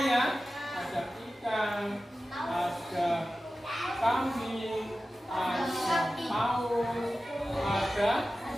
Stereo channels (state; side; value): normal; both; correlation 0.95